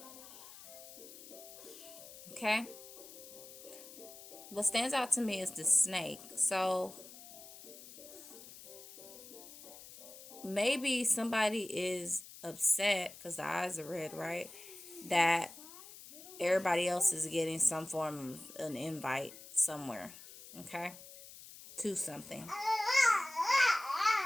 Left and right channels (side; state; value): left; noise; hiss, 16 dB below the sound